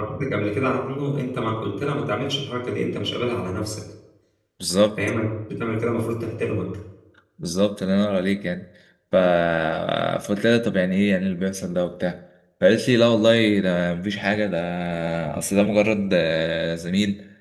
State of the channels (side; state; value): both; identical; correlation 1.00